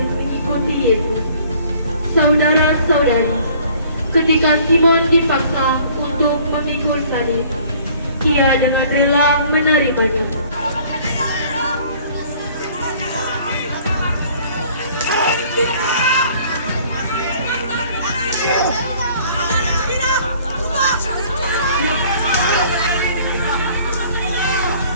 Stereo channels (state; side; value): inverted; both; correlation -0.55